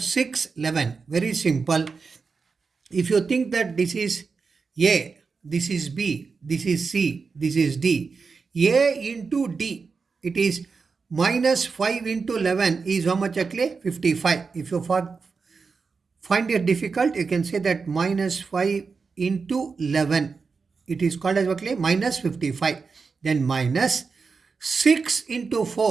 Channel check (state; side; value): quieter; left; 4.9 dB